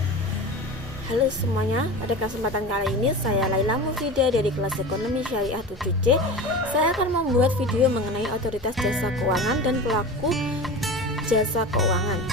Halo semuanya, pada kesempatan kali ini saya Laila Mufida dari kelas Ekonomi Syariah 7C. Saya akan membuat video mengenai otoritas jasa keuangan dan pelaku jasa keuangan.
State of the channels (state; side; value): normal; both; correlation 0.31